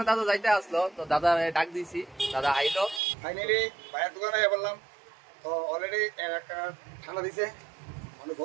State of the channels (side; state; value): left; drops out; at 3.0 s